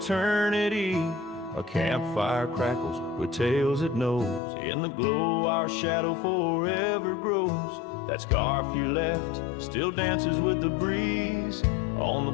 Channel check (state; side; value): drops out; right; at 4.4 s